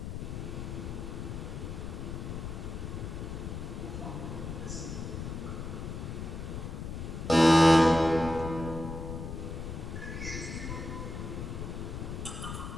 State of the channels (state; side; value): noise; left; rumble, 6 dB below the sound